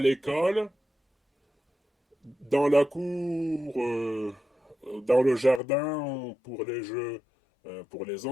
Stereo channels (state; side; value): drops out; right; at 5.6 s